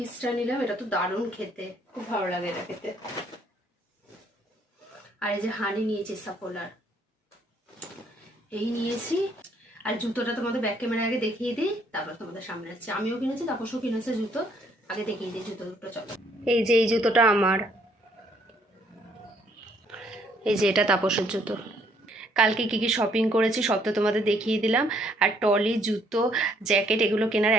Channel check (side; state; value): both; normal; correlation 0.66